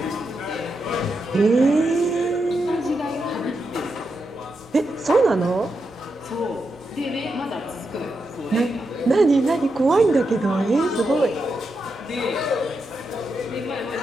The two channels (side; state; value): both; normal; correlation 0.85